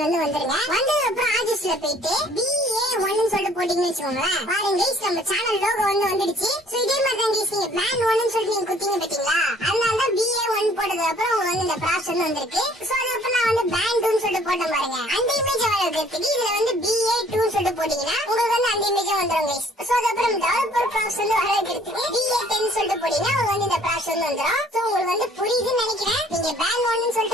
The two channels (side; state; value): both; normal; correlation 0.57